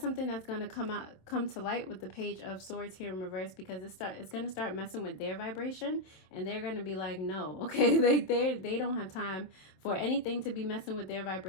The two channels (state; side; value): late; right; 27 ms